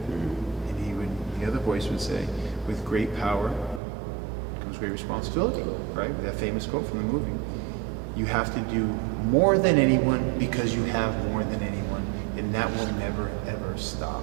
And the other voice would say, with great power comes great responsibility, right? That famous quote from the movie. You have to do more than anyone because you have more than anyone, and that will never, ever stop.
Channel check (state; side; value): drops out; left; at 3.8 s